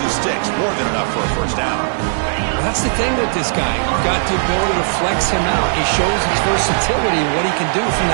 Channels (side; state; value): left; silent; 68 dB below the other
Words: the sticks, more than enough for a first down. Well, that's the thing with this guy. You've got the ability to flex him out. He shows his versatility and what he can do from